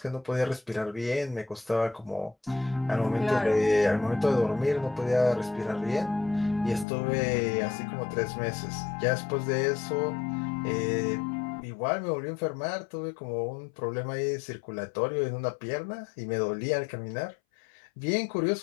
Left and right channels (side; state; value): right; drops out; at 6.9 s